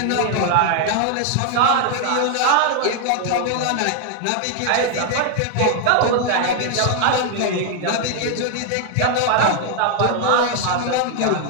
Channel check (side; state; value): both; different; correlation 0.00